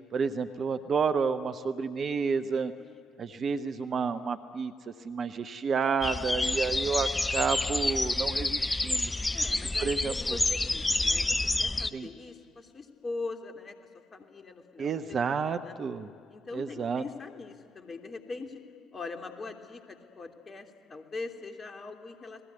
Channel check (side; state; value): both; normal; correlation 0.86